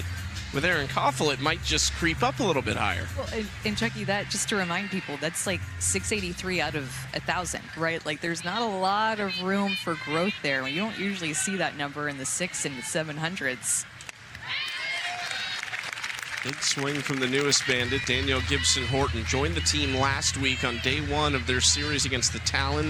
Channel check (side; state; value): both; identical; correlation 1.00